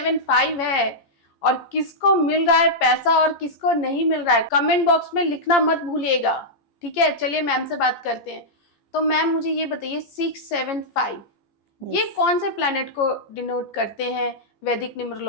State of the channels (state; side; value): late; right; 14 ms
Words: है और किसको मिल रहा है पैसा और किसको नहीं मिल रहा है, कमेंट बॉक्स में लिखना मत भूलिएगा, ठीक है। चलिए मैम से बात करते हैं। तो मैम मुझे ये बताइए 675 ये कौन से प्लैनेट को डिनोट करते हैं वैदिक